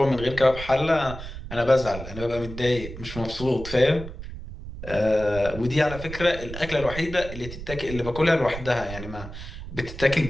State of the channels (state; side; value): noise; right; rumble, 11 dB below the sound